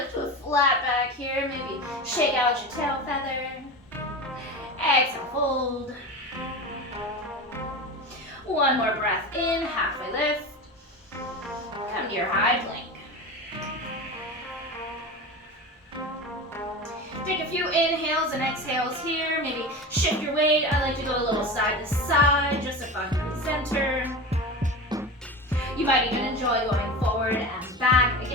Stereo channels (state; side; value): normal; both; correlation 0.27